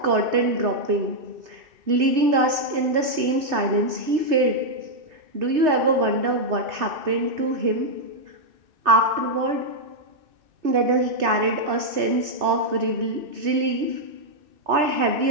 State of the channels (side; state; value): left; late; 2.6 ms